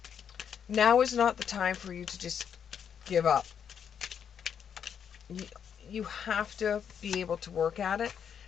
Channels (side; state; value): right; quieter; 7.9 dB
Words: Now is not the time for you to just give up. You have to be able to work at it.